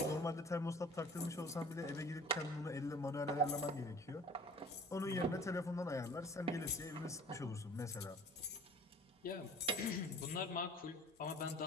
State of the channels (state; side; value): normal; both; correlation 0.46